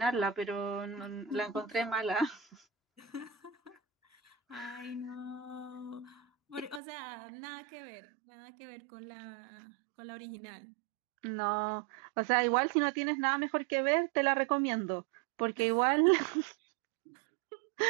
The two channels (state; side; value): drops out; left; at 6.8 s